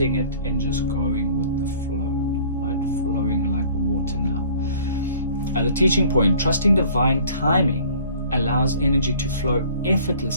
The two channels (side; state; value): both; inverted; correlation -0.52